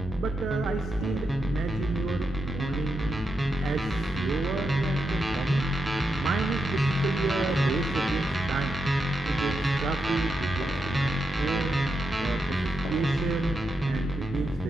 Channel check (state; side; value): normal; both; correlation 0.85